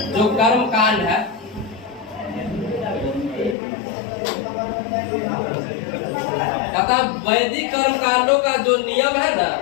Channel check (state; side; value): drops out; right; at 3.6 s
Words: जो कर्म कांड है, कहता वैदिक कर्म कांडों का जो नियम है ना,